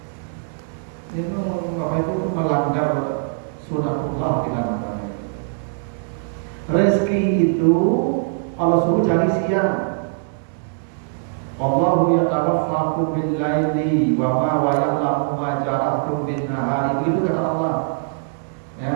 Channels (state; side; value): silent; left; digital silence